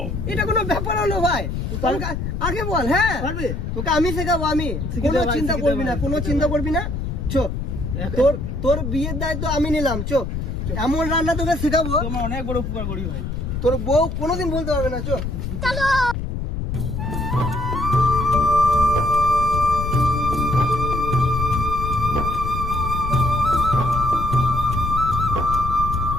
এটা কোনো ব্যাপার হলো ভাই? তোমাকে আগে বল। হ্যাঁ পারবে? তোকে আমি শেখাবো, আমি শিখিয়ে কোনো দে ভাই, চিন্তা শিখিয়ে দে করবি না, ভাই, কোনো শিখিয়ে চিন্তা দে। করবি না। চো তোর তোর বিয়ের দায়িত্ব আমি নিলাম। চো এমন রান্না তোকে শেখাবো তুই আমার অনেক বড় উপকার করি ভাই। তোর বউ কোনোদিন বলতে পারবে না। চো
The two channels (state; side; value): noise; left; rumble, 4 dB below the sound